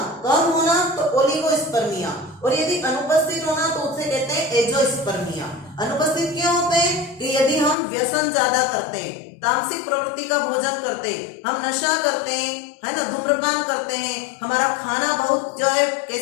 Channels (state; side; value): drops out; right; at 7.8 s